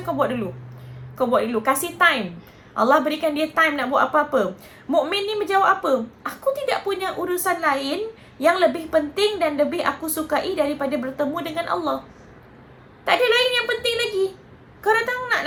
kau buat dulu. Kasih time. Allah berikan dia time nak buat apa-apa. Mukmin ni menjawab apa? Aku tidak punya urusan lain yang lebih penting dan lebih aku sukai daripada bertemu dengan Allah. Tak ada lain yang penting lagi. Kau datang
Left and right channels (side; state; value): both; identical; correlation 1.00